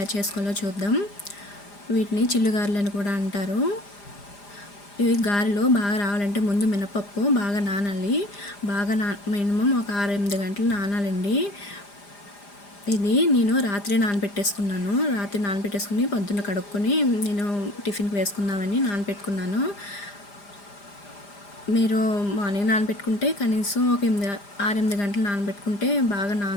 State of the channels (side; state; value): right; late; 5.0 ms